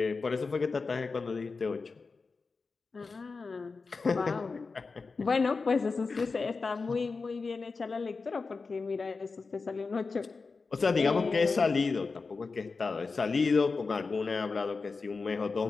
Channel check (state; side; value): quieter; right; 4.3 dB